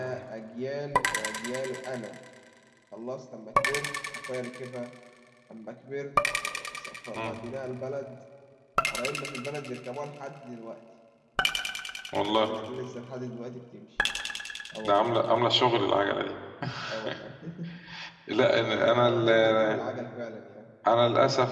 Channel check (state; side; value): identical; both; correlation 1.00